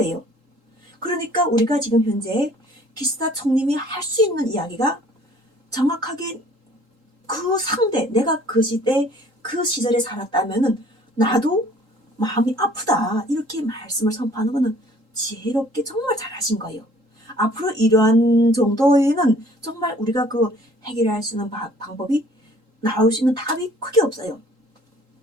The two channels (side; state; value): left; late; 3.8 ms